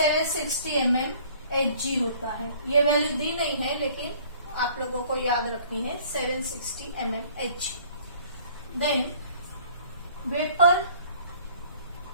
mmHg होता है। ये वैल्यू दी नहीं है लेकिन आप लोगों को याद रखनी है, 760 mmHg। Then vapour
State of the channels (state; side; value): inverted; both; correlation -0.54